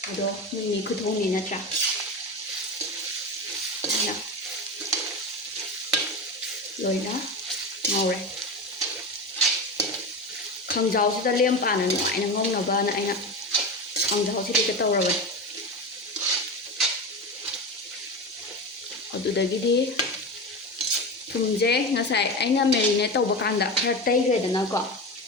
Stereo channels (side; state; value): both; normal; correlation 0.23